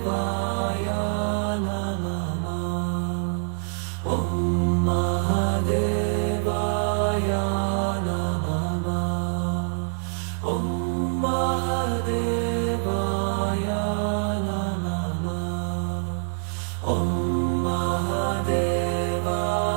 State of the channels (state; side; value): silent; left; digital silence